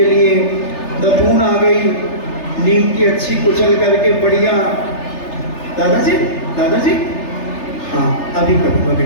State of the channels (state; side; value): late; right; 3.3 ms